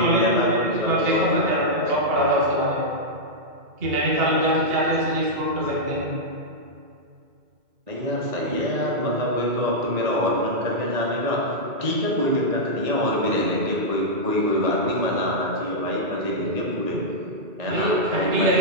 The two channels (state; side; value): late; left; 2.4 ms